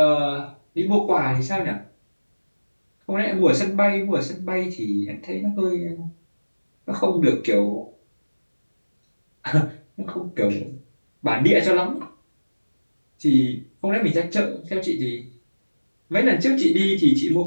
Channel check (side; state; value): both; inverted; correlation -1.00